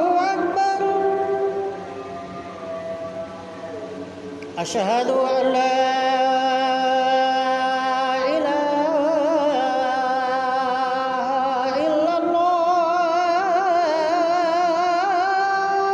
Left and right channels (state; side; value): identical; both; correlation 1.00